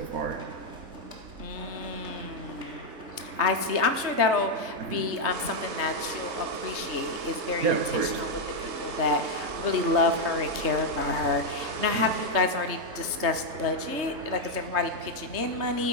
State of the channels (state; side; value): late; left; 3.3 ms